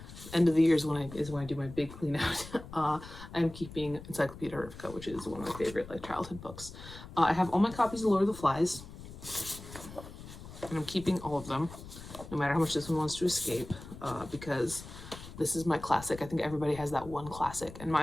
End of the year is when I do my big clean out. I'm keeping Encyclopedia Erifica, which is one of my favorite like childhood books. I have all my copies of Lord of the Flies, and I'm keeping all of them, no matter how much this one wants to escape, because this is my classic. I think everybody has that one classic, and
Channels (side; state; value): left; noise; rumble, 14 dB below the sound